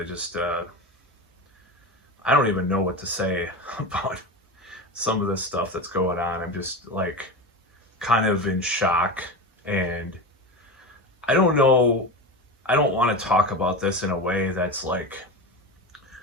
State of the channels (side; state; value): both; normal; correlation 0.24